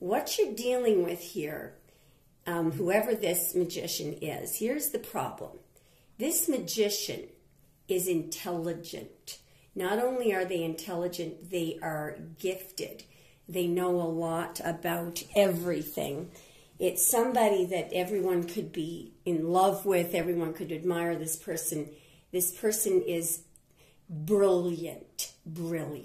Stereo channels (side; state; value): both; identical; correlation 1.00